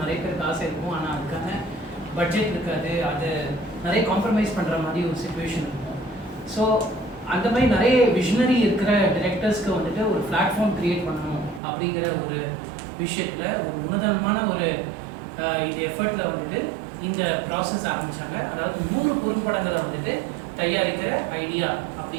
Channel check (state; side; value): drops out; left; at 11.6 s